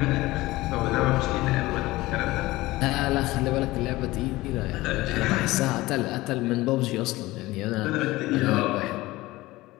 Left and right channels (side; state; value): right; quieter; 19.0 dB